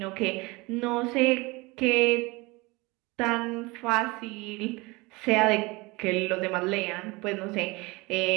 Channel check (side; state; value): left; quieter; 24.2 dB